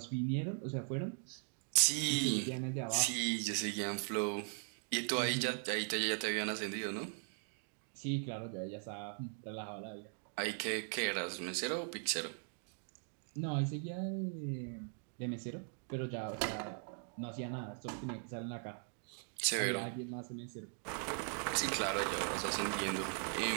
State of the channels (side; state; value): left; silent; 51 dB below the other